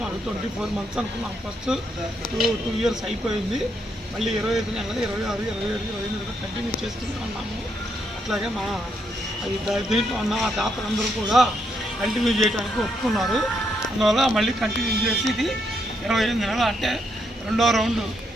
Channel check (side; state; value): both; normal; correlation 0.77